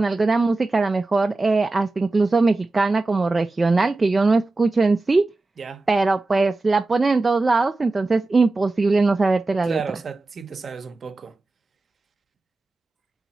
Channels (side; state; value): left; quieter; 3.2 dB